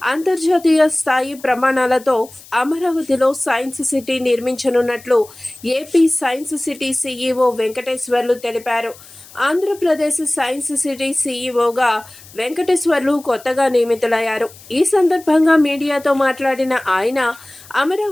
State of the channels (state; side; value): noise; left; hiss, 21 dB below the sound